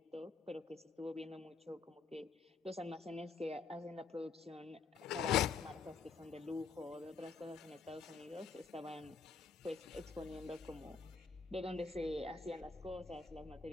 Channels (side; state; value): right; quieter; 4.9 dB